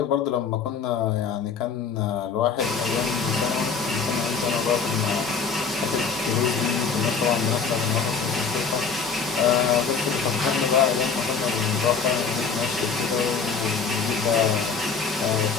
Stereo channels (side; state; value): right; quieter; 5.5 dB